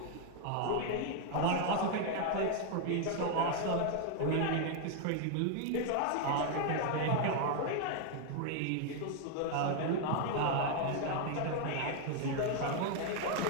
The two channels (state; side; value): different; both; correlation 0.00